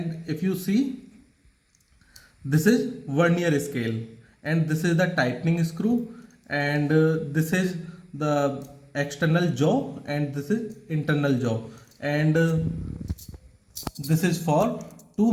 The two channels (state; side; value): identical; both; correlation 1.00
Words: if you see this is vernier scale, and this is the tightening screw, and this is the external jaw and this is internal jaw, and this is for to